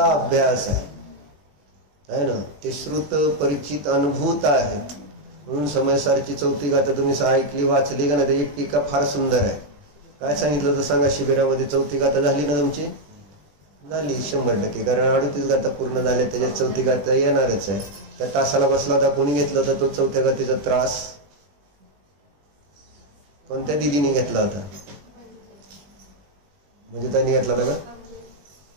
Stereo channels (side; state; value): left; late; 20 ms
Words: अभ्यास आहे ना. ते श्रुत परिचित अनुभूत आहे. म्हणून समयसारची चौथी गाथा तुम्ही ऐकली वाचली का नाही? त्याची टीका फार सुंदर आहे. काय सांगितलं तर सांगा? शिबिरामध्ये चौथी गाथा झाली ना तुमची? झाली 100%, कारण 38 गाथा पूर्ण झाल्या, त्याच्यात चौथी गाथा येणारच आहे. त्या तासाला बसला होता, कोणी घेतला होता तो चौथ्या गाथेचा त्रास? कोणत्या दिदीने घेतला होता? म्हणजे त्यांनी घेतला होता